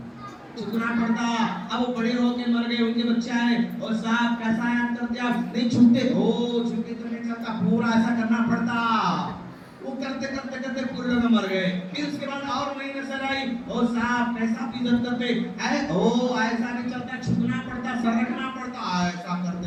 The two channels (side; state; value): both; identical; correlation 1.00